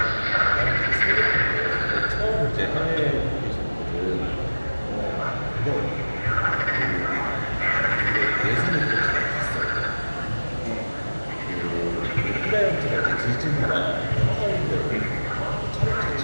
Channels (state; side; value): inverted; both; correlation -1.00